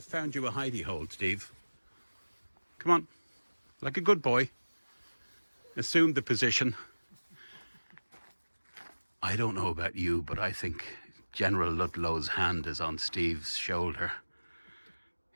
found you a hidey hole, Steve. Come on. Like a good boy. Assume the position. I don't know about you, but I think General Ludlow's hand is on Steve's shoulder.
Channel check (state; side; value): inverted; both; correlation -1.00